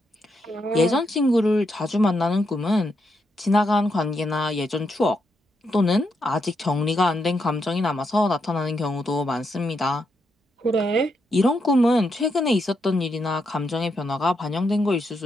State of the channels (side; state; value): both; normal; correlation 0.81